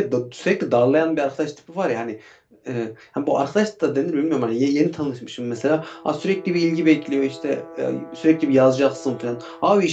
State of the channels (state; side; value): identical; both; correlation 1.00